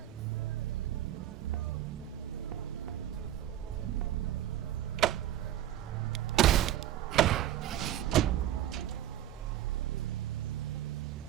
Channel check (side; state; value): left; quieter; 12.3 dB